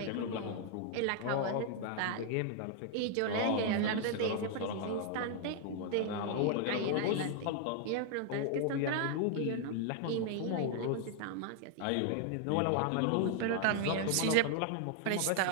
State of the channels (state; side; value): different; both; correlation 0.00